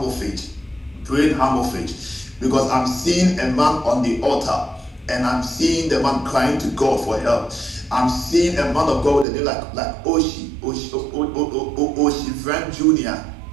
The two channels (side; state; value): left; drops out; at 9.2 s